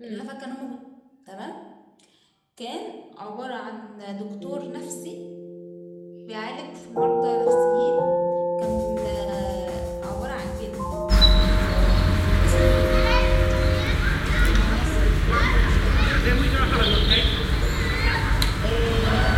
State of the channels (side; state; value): both; identical; correlation 1.00